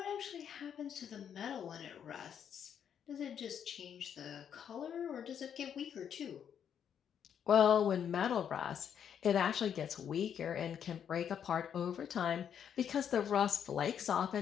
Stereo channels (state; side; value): quieter; right; 8.5 dB